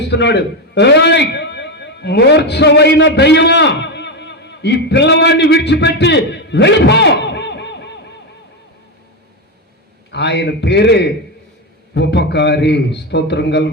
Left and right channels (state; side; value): normal; both; correlation 0.11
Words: ఏయ్ మూర్ఛమైన దయ్యమా, ఈ పిల్లవాడిని విడిచిపెట్టి వెళ్ళిపో. ఆయన పేరే ఉపకారి. స్తోత్రం